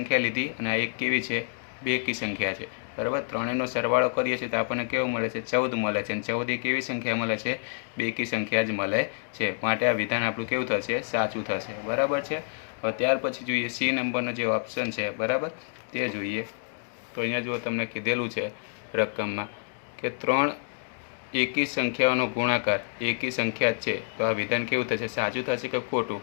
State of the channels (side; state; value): right; silent; digital silence